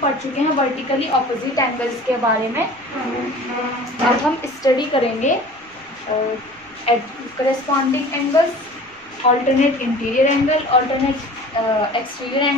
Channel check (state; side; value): noise; right; rumble, 29 dB below the sound